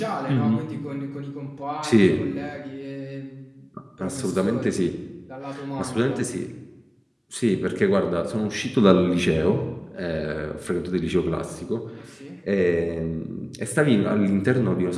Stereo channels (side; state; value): both; identical; correlation 1.00